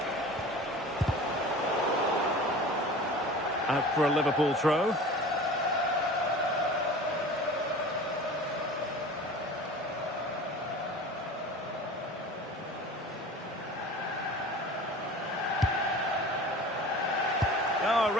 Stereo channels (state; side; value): normal; both; correlation 0.39